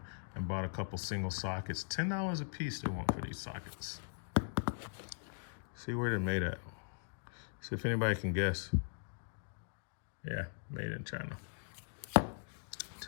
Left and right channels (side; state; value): right; silent; digital silence